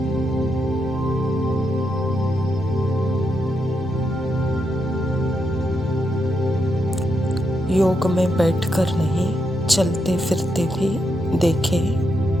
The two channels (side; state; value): both; normal; correlation 0.82